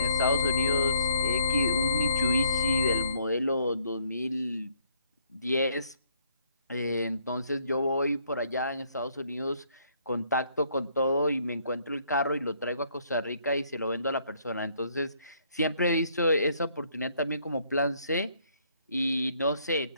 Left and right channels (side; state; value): both; inverted; correlation -0.68